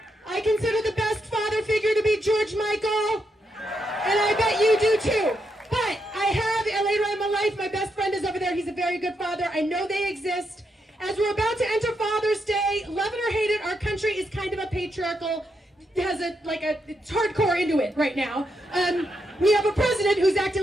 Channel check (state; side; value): normal; both; correlation 0.81